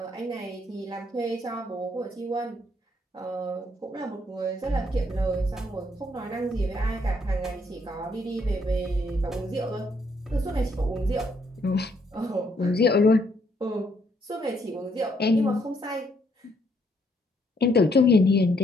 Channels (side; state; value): both; normal; correlation 0.71